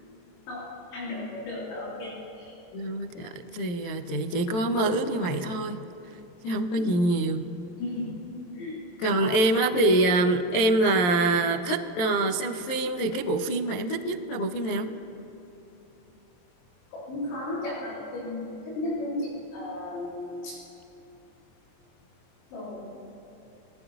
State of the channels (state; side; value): late; right; 23 ms